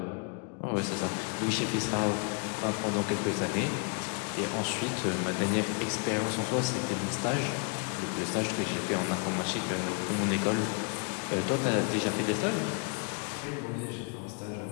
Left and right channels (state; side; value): quieter; right; 37.0 dB